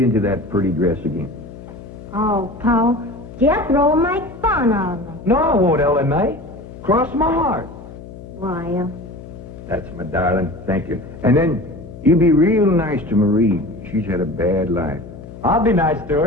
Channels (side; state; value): left; noise; hum, 15 dB below the sound